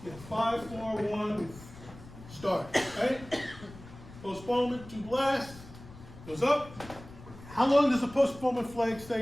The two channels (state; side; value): noise; left; rumble, 17 dB below the sound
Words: 5, 4, 1, start, right? Postponement to blast, goes up. How long does the postponement flag